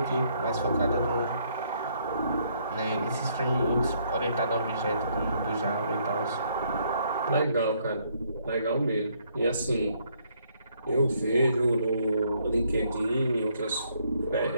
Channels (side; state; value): both; inverted; correlation -0.69